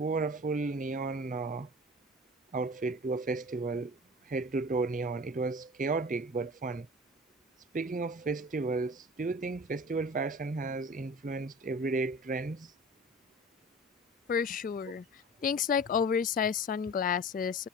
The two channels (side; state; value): both; normal; correlation 0.39